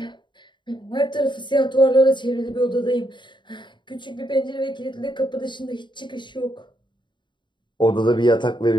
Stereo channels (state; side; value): late; right; 0.23 ms